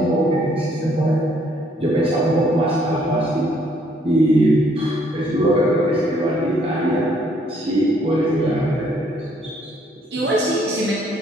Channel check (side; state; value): both; normal; correlation 0.66